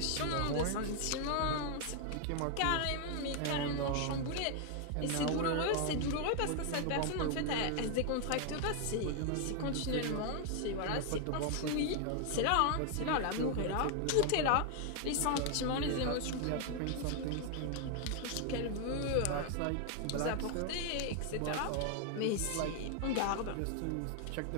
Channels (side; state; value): both; different; correlation 0.00